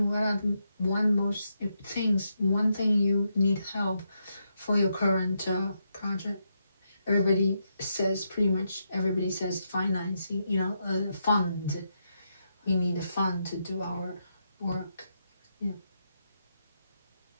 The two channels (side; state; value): both; inverted; correlation -0.82